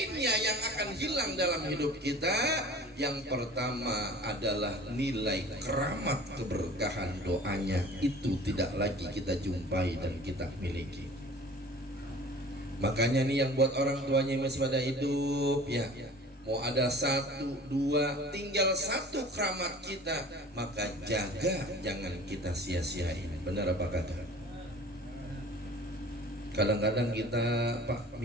yang akan hilang dalam hidup kita. Yang pertama adalah nilai keramat keberkahan doanya. Itu tidak lagi kita jumpai dan kita miliki. Makanya nih yang buat orang tuanya masih pada hidup ya, mau ada satu, dua, tinggal satu keramat kita, maka jaga, jangan kita sia-siain. Benar apa kata? Kadang-kadang kita Pak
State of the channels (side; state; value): both; normal; correlation 0.44